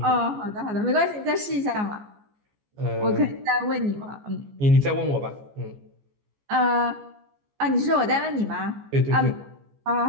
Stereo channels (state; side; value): late; left; 14 ms